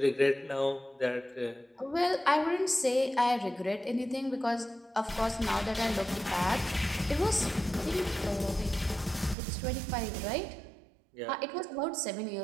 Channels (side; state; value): left; drops out; at 9.3 s